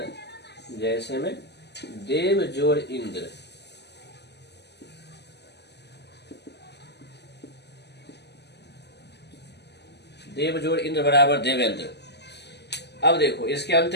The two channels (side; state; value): right; late; 0.50 ms